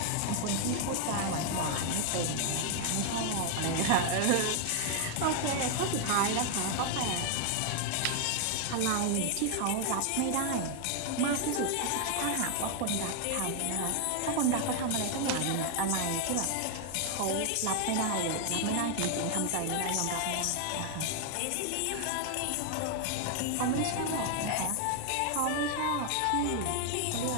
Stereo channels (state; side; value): different; both; correlation 0.00